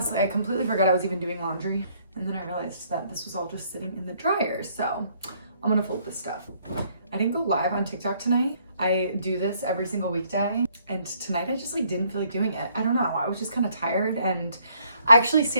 I completely forgot I was even doing laundry. And then I realized that this was all just sitting in the dryer. So I'm gonna fold this stuff. I didn't go live on TikTok tonight. I do this every single weekday. And tonight I just like didn't feel like doing it. I don't know, I was just kind of tired. And I actually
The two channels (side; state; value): both; inverted; correlation -0.66